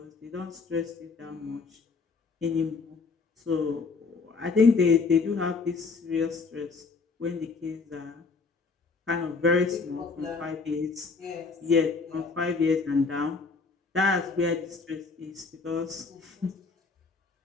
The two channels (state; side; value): quieter; right; 4.5 dB